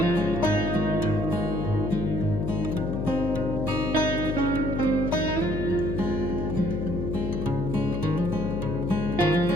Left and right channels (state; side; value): noise; left; hum, 2 dB below the sound